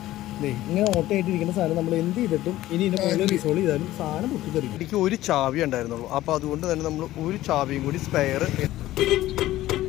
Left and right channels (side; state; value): right; quieter; 15.3 dB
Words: ഇങ്ങനെ ഓട്ടയായിട്ടിരിക്കുന്ന സാധനം നമ്മൾ എന്ത് ചെയ്തിട്ടും ഇനി ഇതിന്റെ മുകളിൽ റിസോൾവ് ചെയ്താലും സാധനം പൊട്ടിത്തെറിക്കും. എനിക്ക് ഒരു ചാവി ഉണ്ടായിരുന്നുള്ളൂ. അപ്പോൾ അതുകൊണ്ട് തന്നെ നമ്മൾ ഒരു ചാവിയും കൂടി സ്പെയർ